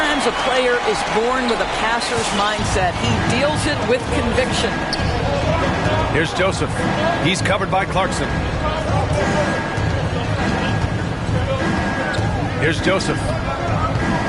a player is born with a passer's mindset. He deals it with conviction. Here's Joseph. He's covered by Clarkson. Here's Joseph.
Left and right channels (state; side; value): identical; both; correlation 1.00